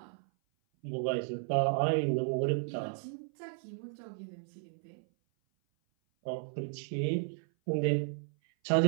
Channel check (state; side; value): silent; left; 55 dB below the other